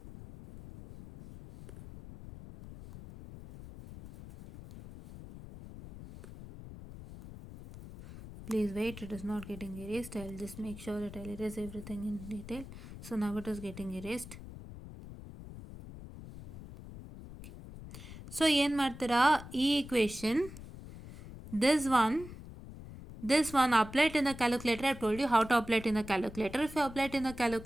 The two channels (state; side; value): noise; left; rumble, 14 dB below the sound